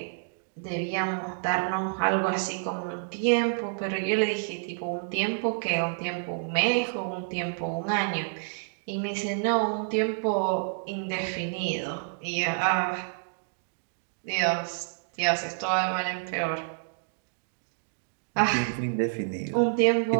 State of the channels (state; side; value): silent; left; digital silence